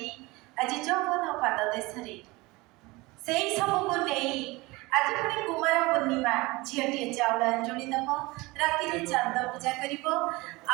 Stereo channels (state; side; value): quieter; left; 22.6 dB